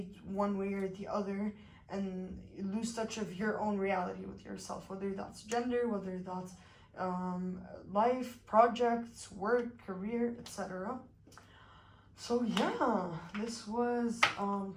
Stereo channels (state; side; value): identical; both; correlation 1.00